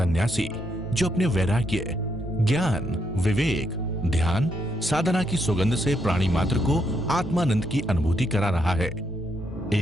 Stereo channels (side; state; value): both; normal; correlation 0.77